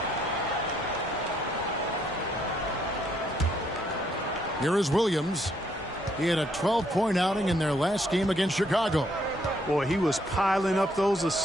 Here is Williams. He had a 12-point outing in their last game against Chicago. Boy, he was piling up those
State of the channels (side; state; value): both; normal; correlation 0.71